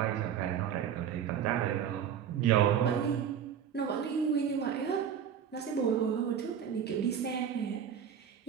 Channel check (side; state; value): left; quieter; 8.4 dB